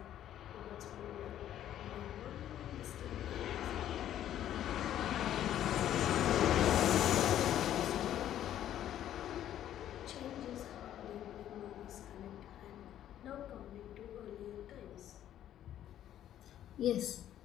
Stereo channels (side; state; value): right; quieter; 11.4 dB